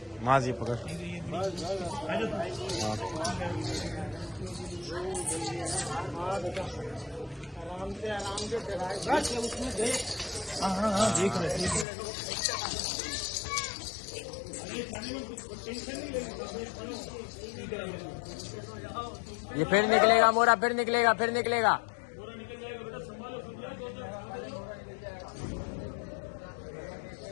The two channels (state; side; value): drops out; right; at 11.9 s